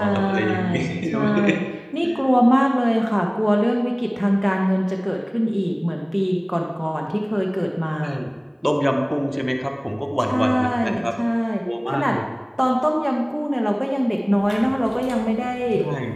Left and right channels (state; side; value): identical; both; correlation 1.00